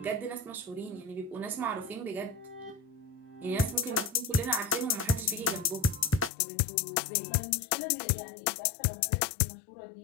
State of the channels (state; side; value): drops out; right; at 6.3 s